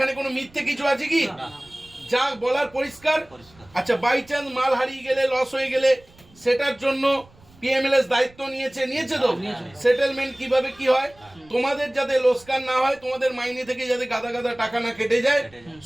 কোনো মিথ্যে কিছু আছে কি? না, যা বলার পরিষ্কার। পরিষ্কার। আচ্ছা, বাই চান্স মাল হারিয়ে গেলে, লস হয়ে গেলে, সেটার জন্য পিএমএলএস দায়িত্ব নিয়েছে তো? সেটেলমেন্ট কিভাবে কি হয়, তোমাদের যাতে লোকসান না হয়, তোমাদের মাইনে থেকে যাতে গাদা গাদা টাকা না কেটে যায়,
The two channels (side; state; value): right; noise; rumble, 27 dB below the sound